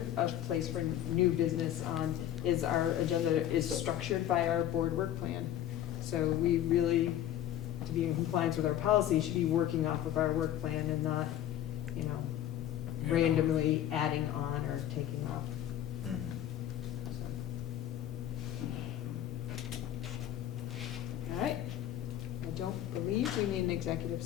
a place for new business on is our agenda is structured by our board work plan. So we really, to be in compliance with our policy, should be working off of our work plan and not, you know, randomly adding on or taking off. So. All right. I don't believe we need an executive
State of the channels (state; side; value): quieter; right; 11.7 dB